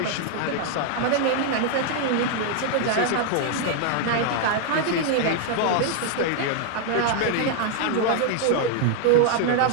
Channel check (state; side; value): different; both; correlation 0.00